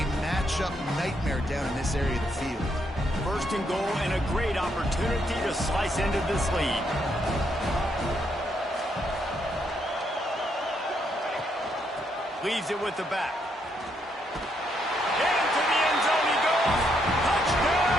matchup nightmare down in this area of the field. First and goal, and a great opportunity to slice into this lead. Leaves it with the back. Into the end zone he goes.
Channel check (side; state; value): both; normal; correlation 0.76